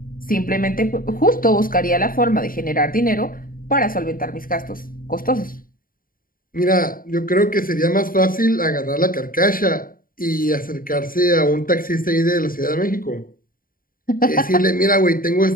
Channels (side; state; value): right; late; 0.41 ms